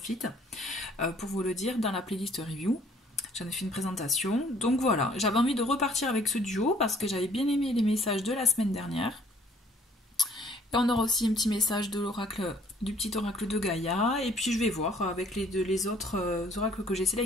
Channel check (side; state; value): both; normal; correlation 0.59